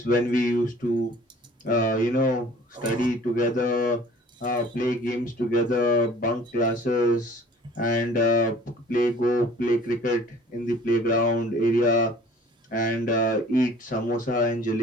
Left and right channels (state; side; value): normal; both; correlation 0.50